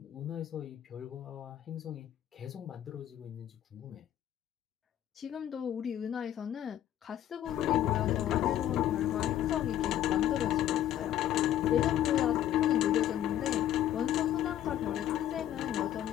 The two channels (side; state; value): right; quieter; 11.7 dB